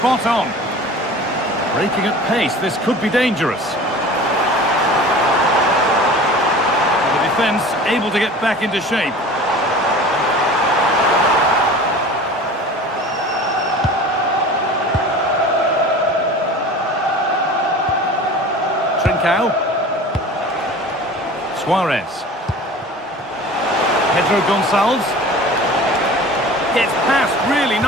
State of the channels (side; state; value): both; normal; correlation 0.40